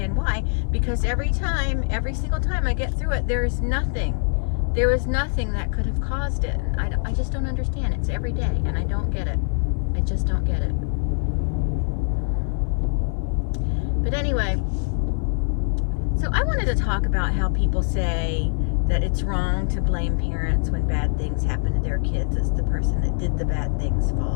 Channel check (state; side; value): silent; right; 57 dB below the other